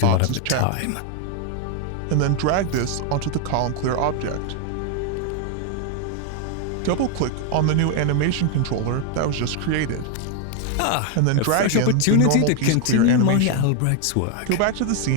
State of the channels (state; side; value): different; both; correlation 0.01